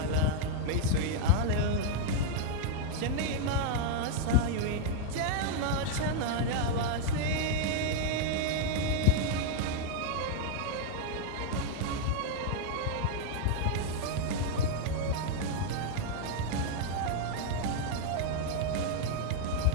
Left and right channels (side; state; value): both; different; correlation 0.00